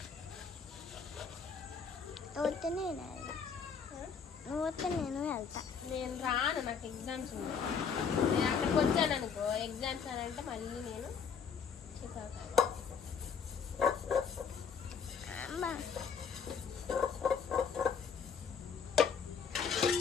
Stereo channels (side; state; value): right; quieter; 6.4 dB